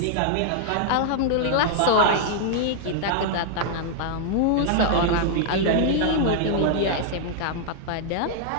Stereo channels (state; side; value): different; both; correlation -0.01